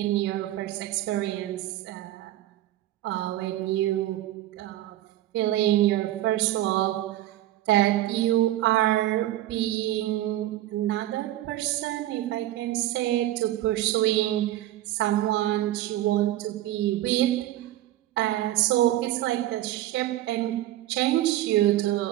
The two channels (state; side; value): quieter; left; 14.6 dB